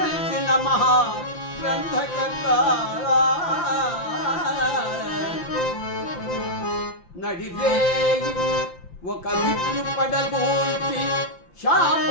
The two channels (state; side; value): late; right; 5.8 ms